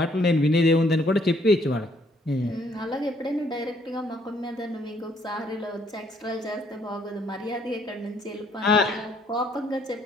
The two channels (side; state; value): both; normal; correlation 0.66